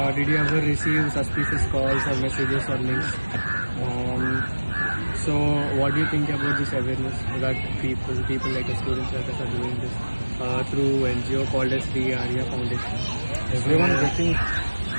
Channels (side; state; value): both; inverted; correlation -1.00